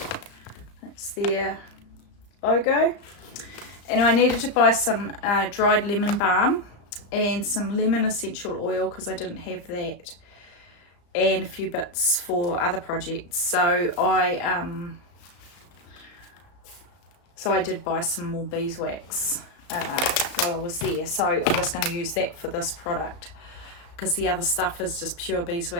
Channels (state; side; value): late; right; 34 ms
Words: That's their logo. And I needed to buy some dried lemon balm and some lemon essential oil because I didn't have that, and a few bits for other projects. So I did buy some more beeswax while I was there. So I'm just going to use that for this product because the other stuff is just pure